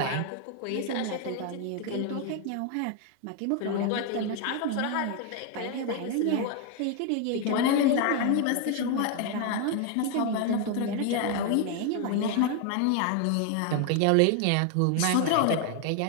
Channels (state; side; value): different; both; correlation 0.01